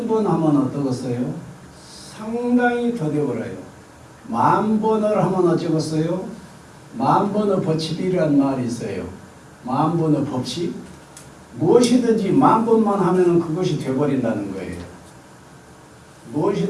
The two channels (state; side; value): identical; both; correlation 1.00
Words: 하면 어떠겠어요? 상당히 더 되어버려요. 10,000번을 하면 어쩌겠어요? 10,000번의 법칙이라는 말이 있어요. 10,000번의 법칙? 무엇이든지 10,000번만 하면 그것이 되어버린다는 거예요.